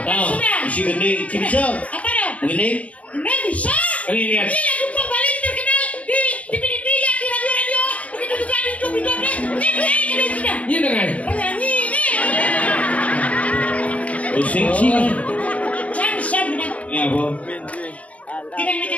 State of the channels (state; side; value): late; right; 0.071 ms